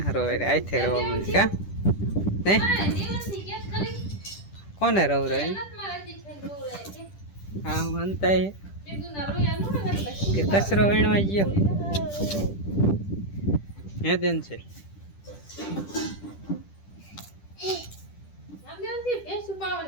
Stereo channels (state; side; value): late; right; 10 ms